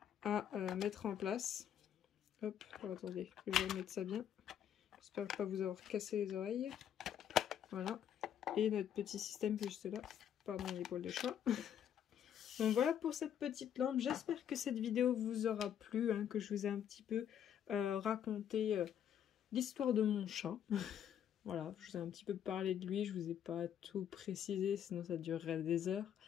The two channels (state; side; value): quieter; right; 9.5 dB